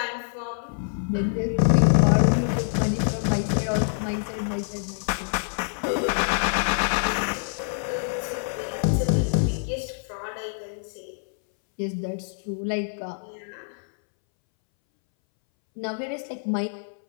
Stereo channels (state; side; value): silent; right; 61 dB below the other